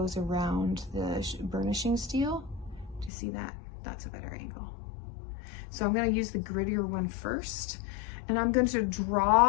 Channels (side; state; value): right; drops out; at 3.1 s